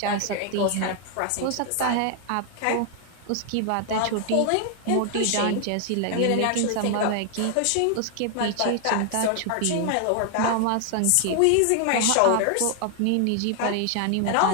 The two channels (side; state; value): both; different; correlation 0.00